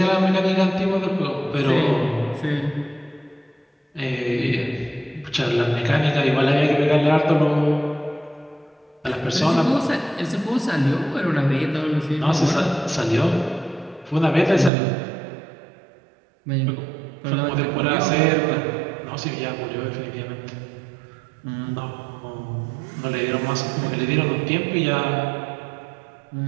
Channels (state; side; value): drops out; left; at 14.7 s